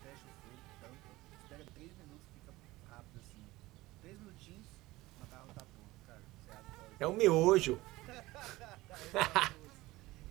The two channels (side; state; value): left; quieter; 19.1 dB